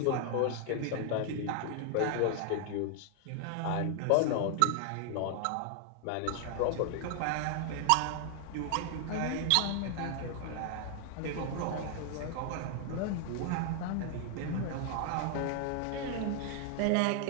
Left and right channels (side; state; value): both; different; correlation 0.00